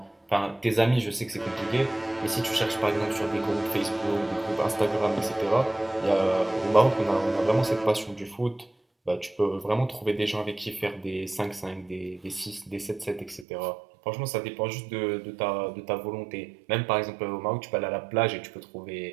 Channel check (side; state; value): left; drops out; at 13.5 s